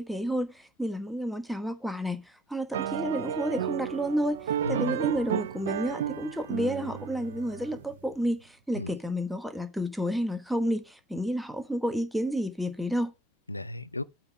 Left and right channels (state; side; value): normal; both; correlation 0.61